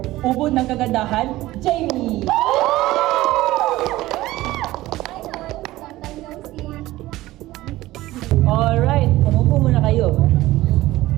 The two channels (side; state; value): left; quieter; 17.1 dB